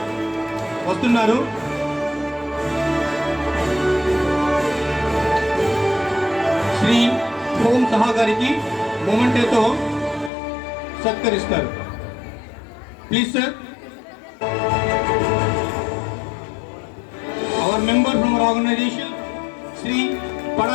వస్తున్నారు. శ్రీ ఓం సహా గారికి మొమెంటోతో సత్కరిస్తారు. Please sir. Our member from our organization, Sri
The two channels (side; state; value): right; drops out; at 10.3 s